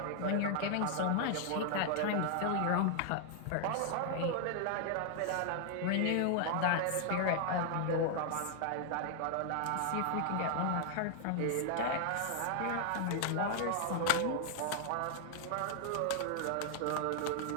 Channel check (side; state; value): both; different; correlation 0.00